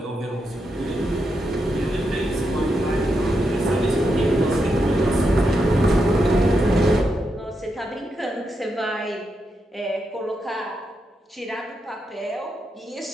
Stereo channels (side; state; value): both; normal; correlation 0.84